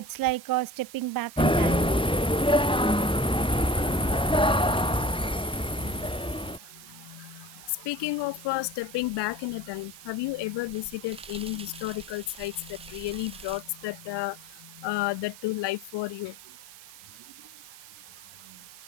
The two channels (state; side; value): noise; right; hiss, 17 dB below the sound